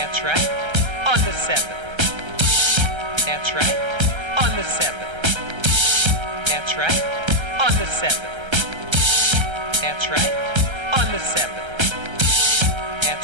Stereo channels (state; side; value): late; left; 1.3 ms